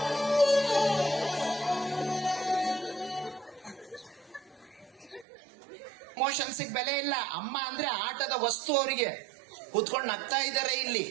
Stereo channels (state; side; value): drops out; left; at 5.2 s